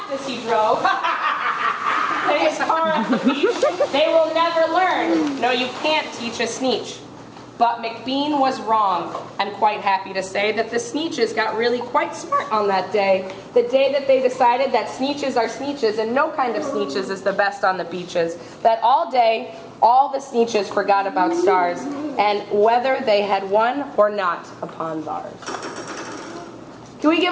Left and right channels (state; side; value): identical; both; correlation 1.00